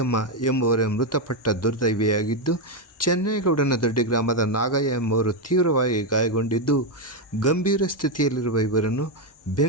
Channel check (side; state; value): both; normal; correlation 0.05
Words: ಎಂಬುವರ ಮೃತಪಟ್ಟ ದುರ್ದೈವಿಯಾಗಿದ್ದು, ಚೆನ್ನೇಗೌಡನದೊಡ್ಡಿ ಗ್ರಾಮದ ನಾಗಯ್ಯ ಎಂಬುವರು ತೀವ್ರವಾಗಿ ಗಾಯಗೊಂಡಿದ್ದು, ಗಂಭೀರ ಸ್ಥಿತಿಯಲ್ಲಿರುವ ಇವರನ್ನು